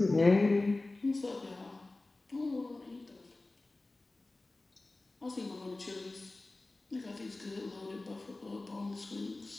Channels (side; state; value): right; quieter; 3.1 dB